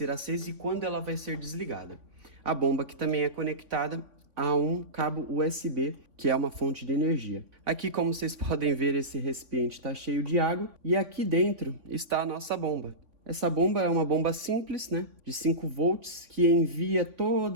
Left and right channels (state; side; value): late; left; 3.5 ms